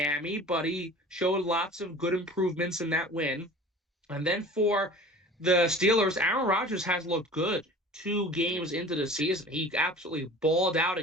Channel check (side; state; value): both; normal; correlation 0.42